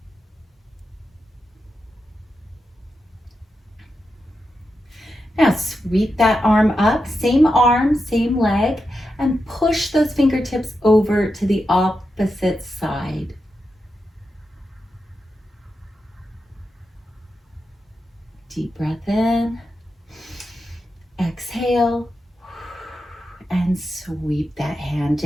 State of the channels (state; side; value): normal; both; correlation 0.88